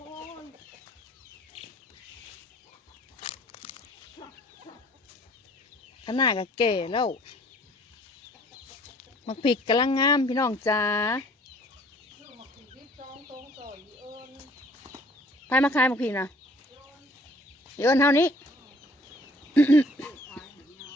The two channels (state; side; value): normal; both; correlation 0.56